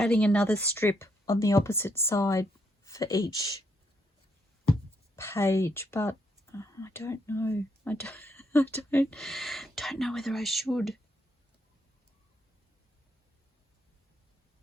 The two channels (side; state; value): both; normal; correlation 0.75